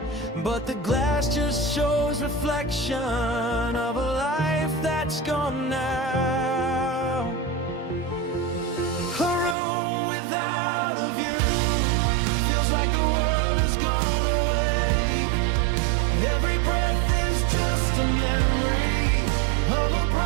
but the glass just shows reflection of a life that's gone now. A room without a view feels like the world has gone away. Every breath is just a memory of a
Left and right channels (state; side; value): drops out; left; at 9.6 s